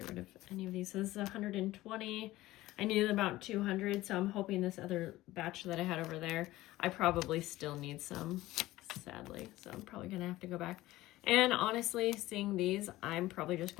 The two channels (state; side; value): quieter; right; 17.1 dB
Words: rid of any of these. This is 120. I needed about 200, so I'm hoping this other batch that I had over there, I probably still need some, sadly. So I'm probably going to have to go back. And honestly, seeing these, I'm probably just